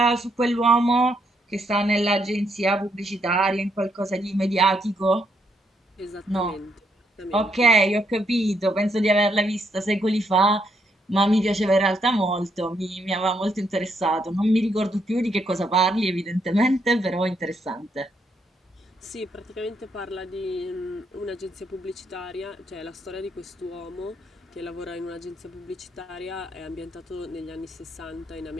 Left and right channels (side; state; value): both; normal; correlation 0.75